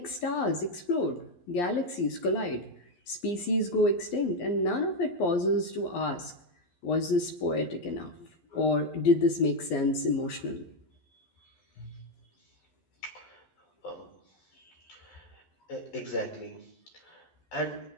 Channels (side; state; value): right; late; 11 ms